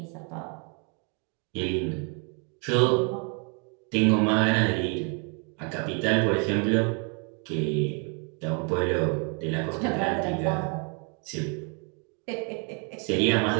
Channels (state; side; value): quieter; left; 36.9 dB